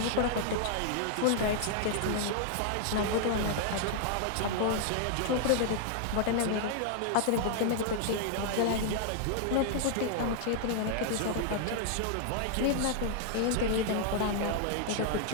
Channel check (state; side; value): different; both; correlation -0.01